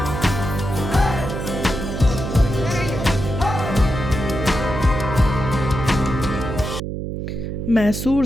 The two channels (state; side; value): noise; right; hum, 5 dB below the sound